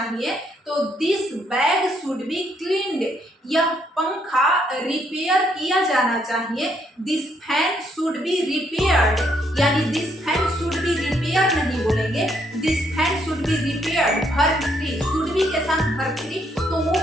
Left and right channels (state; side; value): normal; both; correlation 0.72